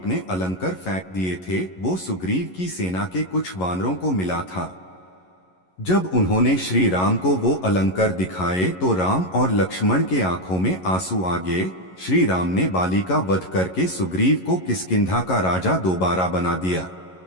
अलंकर फेंक दिए थे। वो सुग्रीव की सेना के कुछ वानरों को मिला था। जब उन्होंने श्री राम को वो अलंकर दिखाए, तो राम और लक्ष्मण के आंखों में आंसू आ गए। श्री राम ने बाली का वध करके सुग्रीव को किष्किंधा का राजा दोबारा बना दिया।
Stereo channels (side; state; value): right; late; 11 ms